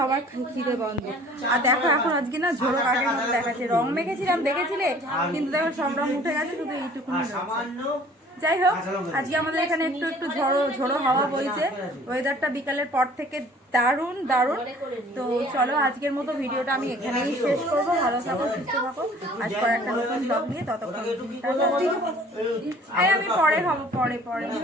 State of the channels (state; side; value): normal; both; correlation 0.52